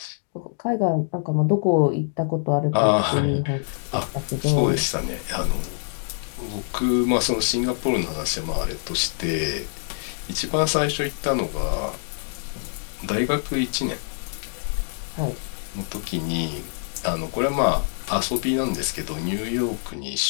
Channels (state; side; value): silent; right; digital silence